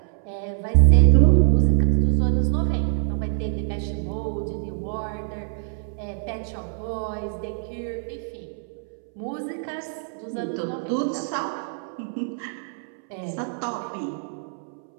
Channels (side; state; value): left; silent; 62 dB below the other